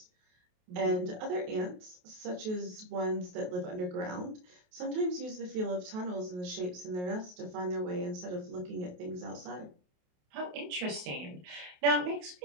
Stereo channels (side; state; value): left; late; 28 ms